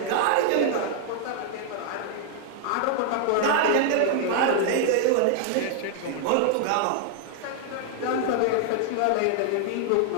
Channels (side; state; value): both; different; correlation 0.00